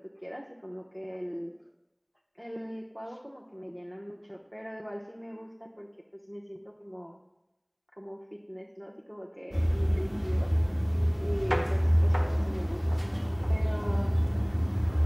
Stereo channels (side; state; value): both; identical; correlation 1.00